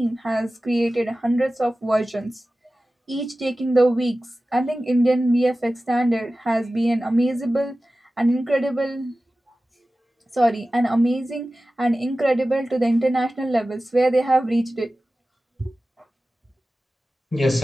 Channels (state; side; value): normal; both; correlation 0.95